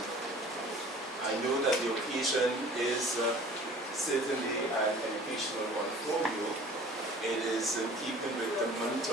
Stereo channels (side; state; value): both; normal; correlation 0.46